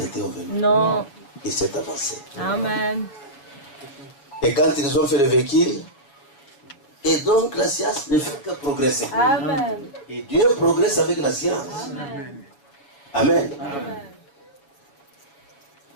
au vélo. Non. Il s'est avancé. Amen. Et quand ils ont fait le véhicule, et donc la science ne fait que progresser. Amen. Et Dieu progresse avec la science. Amen. Amen. Amen.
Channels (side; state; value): right; late; 7.2 ms